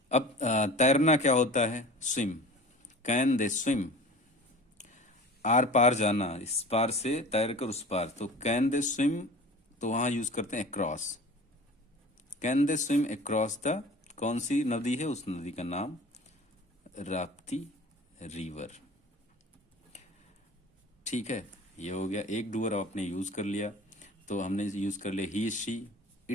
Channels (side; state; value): both; normal; correlation 0.40